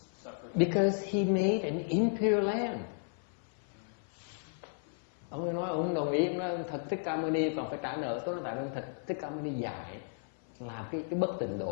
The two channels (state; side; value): silent; right; 55 dB below the other